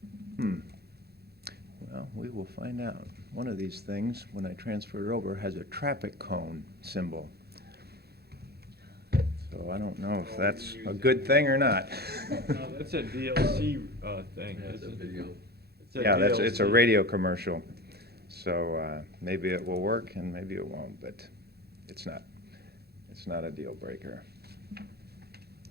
we will find out. One of these things, when I transfer it over, has a traffic cone symbol. So I don't know if that's a good thing or not. No, that's a DLC thing, That's a isn't it? video. It's a Yeah, it's a DLC. radio commercial. So maybe it will work and maybe it won't, but it's not a deal breaker. Make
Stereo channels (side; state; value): left; late; 0.46 ms